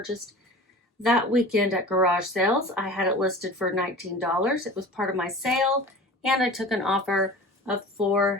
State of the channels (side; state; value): both; normal; correlation 0.38